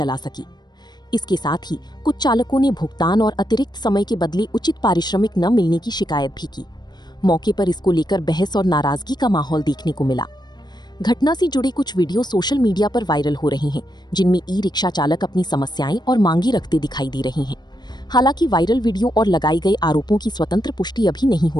सकी। इसके साथ ही कुछ चालकों ने भुगतान और अतिरिक्त समय के बदले उचित पारिश्रमिक न मिलने की शिकायत भी की। मौके पर इसको लेकर बहस और नाराजगी का माहौल देखने को मिला। घटना से जुड़े कुछ वीडियो सोशल मीडिया पर वायरल हो रहे हैं, जिनमें ई रिक्शा चालक अपनी समस्याएं और मांगे रखते दिखाई दे रहे हैं। हालांकि वायरल वीडियो और लगाए गए आरोपों की स्वतंत्र पुष्टि अभी नहीं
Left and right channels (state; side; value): late; right; 0.21 ms